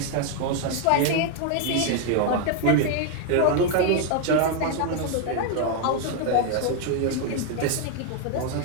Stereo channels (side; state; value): both; different; correlation 0.00